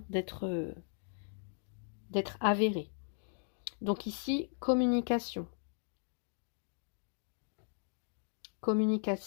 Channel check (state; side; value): silent; right; 53 dB below the other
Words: d'être avérée. Donc ici, communication.